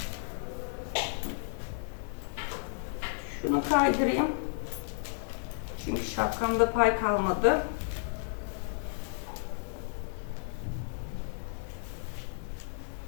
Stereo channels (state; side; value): silent; right; digital silence